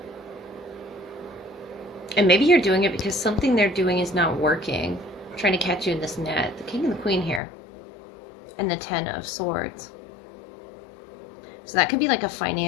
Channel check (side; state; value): right; drops out; at 7.4 s